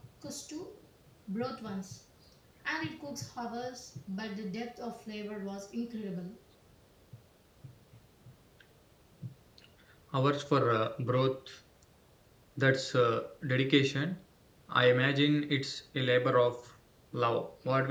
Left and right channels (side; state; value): both; identical; correlation 1.00